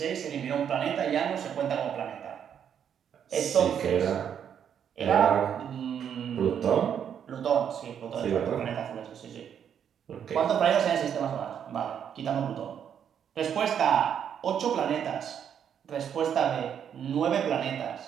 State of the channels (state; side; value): quieter; left; 8.5 dB